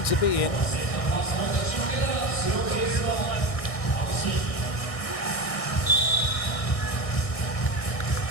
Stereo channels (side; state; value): right; late; 1.6 ms